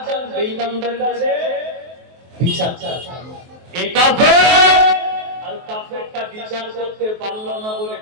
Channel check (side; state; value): left; late; 23 ms